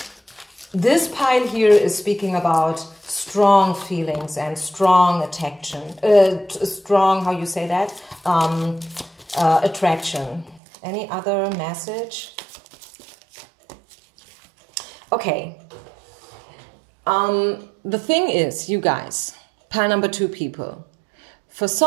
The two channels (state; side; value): drops out; left; at 10.6 s